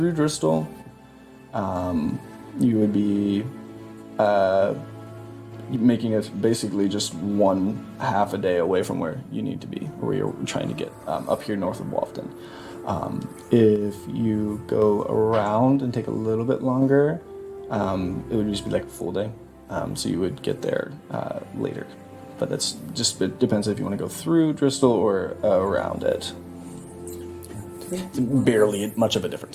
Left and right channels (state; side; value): identical; both; correlation 1.00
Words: Bristol, you would be making it basically just one half a day away from where you need to be, or where you're trying to get up here north of Walton. If you go around and take a little bit longer, it would just be like a full day. So you would get there later. But that's just, it depends if you want to go through Bristol or around it. Barely much of a